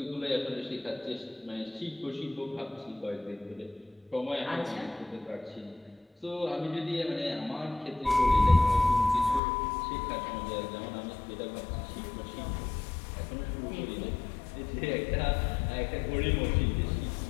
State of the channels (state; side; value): drops out; right; at 9.4 s